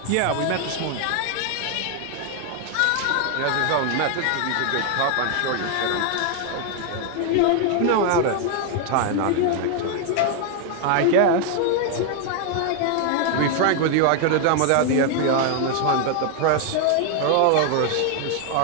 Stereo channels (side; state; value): both; different; correlation 0.00